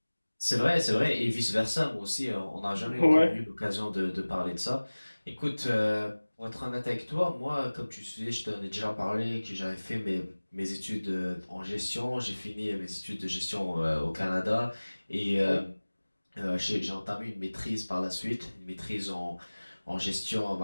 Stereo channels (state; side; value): inverted; both; correlation -1.00